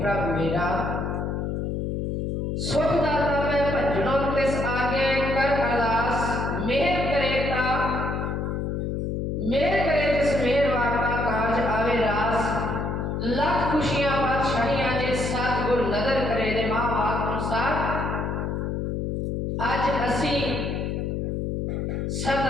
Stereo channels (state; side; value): noise; left; hum, 2 dB below the sound